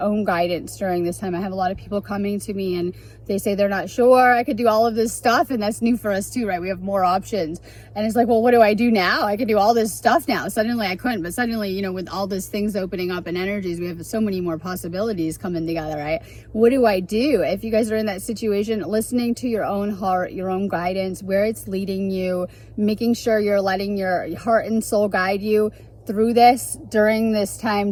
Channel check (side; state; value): both; identical; correlation 1.00